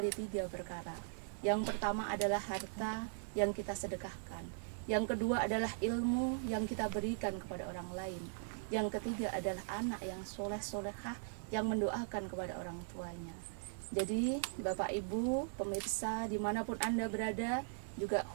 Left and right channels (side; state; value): left; silent; digital silence